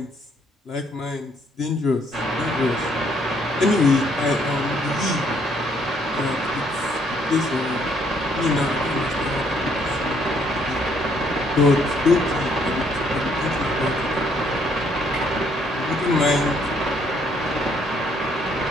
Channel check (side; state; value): both; normal; correlation 0.67